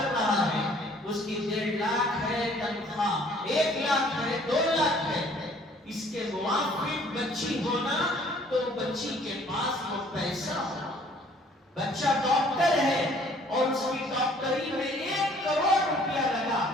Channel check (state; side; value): normal; both; correlation 0.57